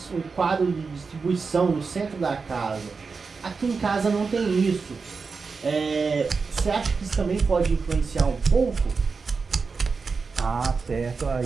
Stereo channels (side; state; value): left; quieter; 4.8 dB